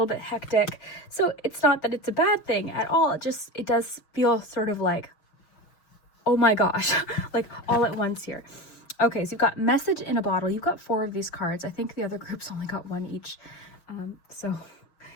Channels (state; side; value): late; right; 6.3 ms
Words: bit hectic. So it's not that it's a bad thing at all. It does feel sort of like, oh my gosh, like all at once here. Okay, so you've got Message in a Bottle. You've got 4 of these cards. I think the other groups only got 1 each. So